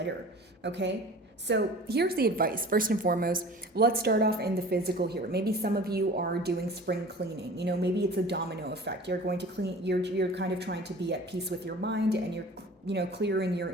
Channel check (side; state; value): both; normal; correlation 0.42